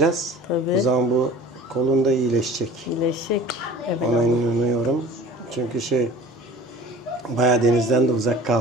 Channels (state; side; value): normal; both; correlation 0.42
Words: Tabii. O zaman bu kolun da iyileşecek. İyileşecek. Evet. Ona inanıyorum. Çünkü bayağı denizden de uzak